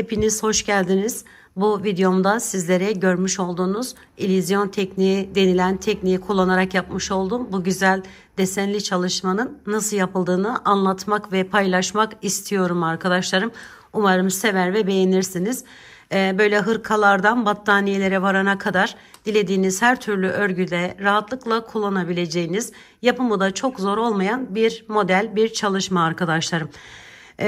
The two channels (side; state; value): both; identical; correlation 1.00